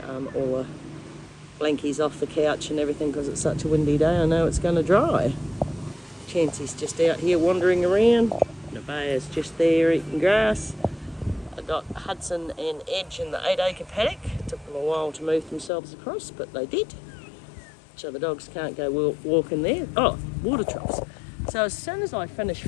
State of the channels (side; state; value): right; drops out; at 15.7 s